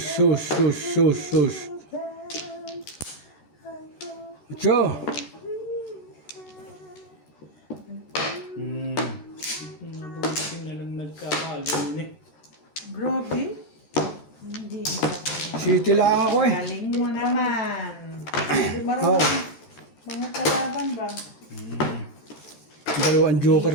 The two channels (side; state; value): right; late; 13 ms